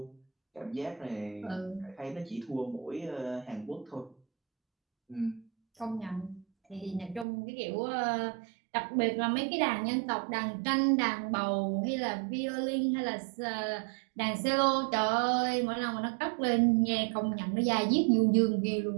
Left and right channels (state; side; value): drops out; left; at 7.2 s